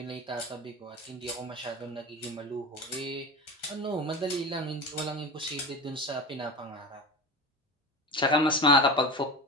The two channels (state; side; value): normal; both; correlation 0.28